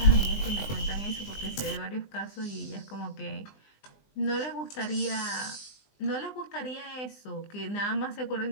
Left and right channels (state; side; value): late; right; 20 ms